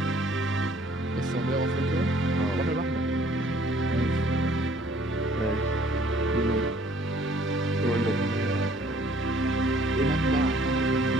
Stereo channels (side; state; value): both; normal; correlation 0.59